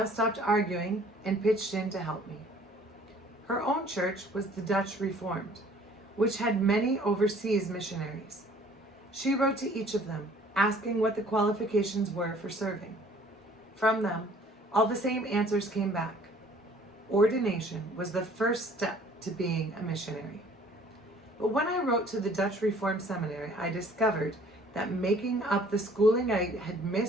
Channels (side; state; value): both; normal; correlation 0.55